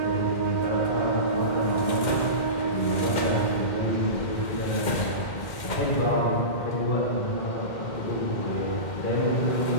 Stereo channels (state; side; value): late; right; 2.1 ms